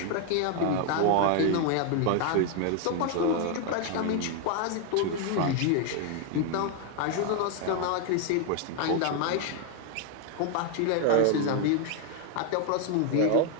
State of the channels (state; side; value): different; both; correlation 0.00